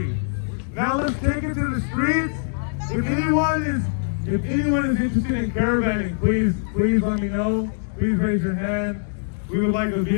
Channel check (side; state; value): right; silent; digital silence